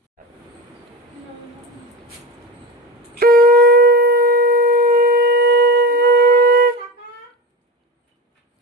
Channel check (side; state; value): both; normal; correlation 0.25